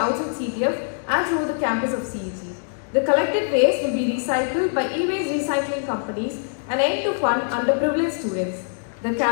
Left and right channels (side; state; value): right; silent; digital silence